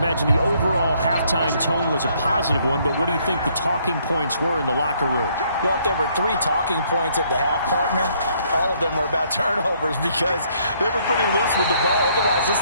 the overall halftime tone was a positive one, but what do you think the talking points were in the locker room? Well, if there were 3 talking points at the half, partner, all of them were about turnovers because they were pretty loose with the ball. Otherwise,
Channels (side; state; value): both; inverted; correlation -0.67